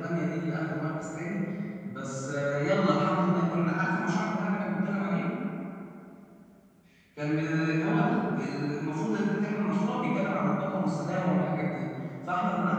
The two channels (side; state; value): both; identical; correlation 1.00